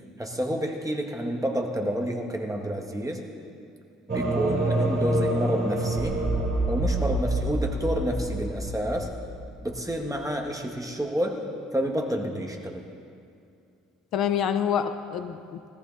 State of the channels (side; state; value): both; normal; correlation 0.69